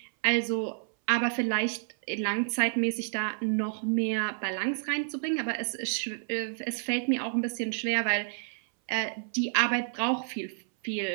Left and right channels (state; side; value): silent; left; 58 dB below the other